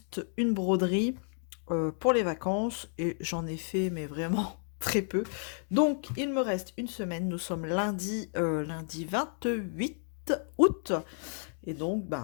une broderie pour les vacances et j'en ai fait mais vraiment très peu. Donc il me reste une semaine. Nous sommes lundi 28 août. Et donc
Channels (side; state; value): right; silent; 57 dB below the other